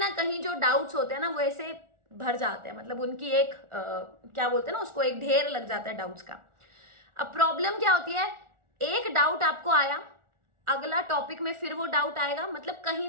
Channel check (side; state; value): left; late; 1.4 ms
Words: कहीं जो डाउट्स होते हैं ना वो ऐसे भर जाते हैं, मतलब उनकी एक क्या बोलते हैं ना उसको, एक ढेर लग जाता है डाउट्स का। अब प्रॉब्लम क्या होती है, एक डाउट आपको आया, अगला टॉपिक में फिर वो डाउट आएगा, मतलब